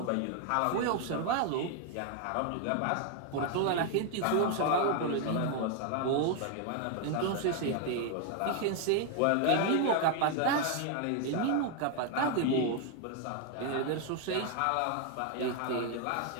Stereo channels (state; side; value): different; both; correlation 0.00